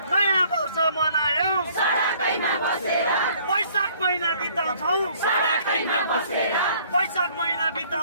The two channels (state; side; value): inverted; both; correlation -0.59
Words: नयाँ वर्ष मनायौ सडकैमा बसेर वैशाख महिना बिताउँछौ सडकैमा बसेर वैशाख महिना